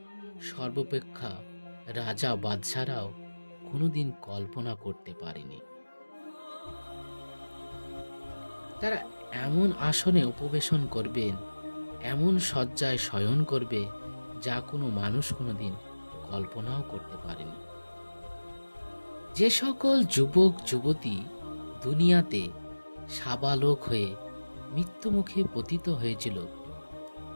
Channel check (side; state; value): both; inverted; correlation -1.00